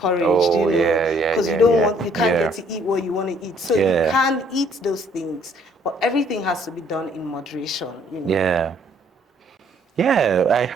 Oh, yeah, yeah, because yeah, yeah, you can't get yeah, to eat what you want to eat. So you yeah, can eat those things, but everything has to be done in moderation. yeah. Yeah, I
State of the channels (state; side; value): normal; both; correlation 0.63